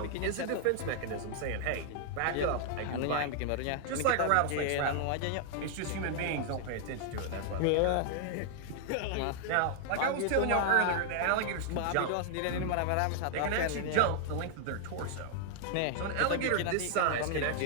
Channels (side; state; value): both; different; correlation 0.00